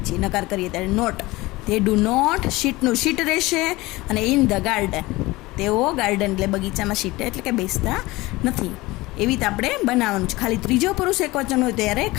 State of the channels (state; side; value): quieter; right; 20.5 dB